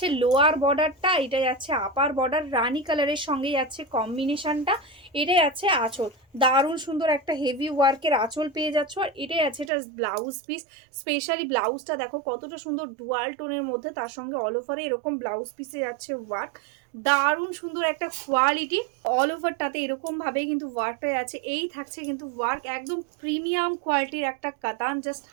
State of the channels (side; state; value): left; drops out; at 9.7 s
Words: লোয়ার বর্ডারটা, এটাই যাচ্ছে আপার বর্ডার, রানি কালারের সঙ্গে যাচ্ছে কম্বিনেশনটা। এটাই যাচ্ছে আঁচল, দারুণ সুন্দর একটা হেভি ওয়ার্কের আঁচল পেয়ে যাচ্ছ। আর এটাই আছে এটার ব্লাউজ পিস, স্পেশালি ব্লাউজটা দেখো কতটা সুন্দর ডুয়াল টোনের মধ্যে, তার সঙ্গে অল ওভারে এরকম ব্লাউজ পিসে যাচ্ছে ওয়ার্ক, দারুণ সুন্দর একটা কোয়ালিটি। অল ওভারটাতে এরকম ভাবে কিন্তু ওয়ার্কটা আছে, এই থাকছে কিন্তু ওয়ার্ক, একদম প্রিমিয়াম কোয়ালিটির একটা কাতান, জাস্ট